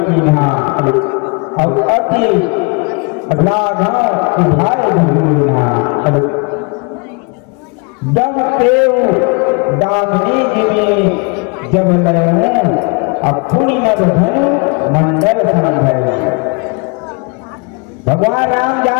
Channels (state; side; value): quieter; right; 32.6 dB